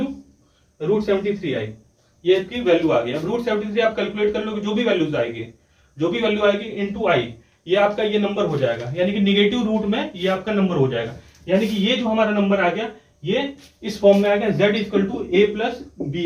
√73i, ये आपकी वैल्यू आ गई। अब √73 आप कैलकुलेट कर लोगे, जो भी वैल्यू आएगी इनटू i, ये आपका ये नंबर हो जाएगा, यानी कि निगेटिव रूट में ये आपका नंबर हो जाएगा, यानी कि ये जो हमारा नंबर आ गया ये इस फॉर्म में आ गया, z = a + bi,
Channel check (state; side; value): identical; both; correlation 1.00